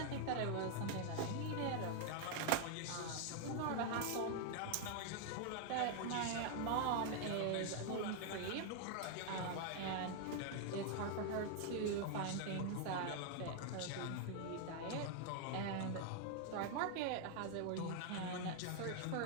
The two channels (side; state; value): both; different; correlation 0.00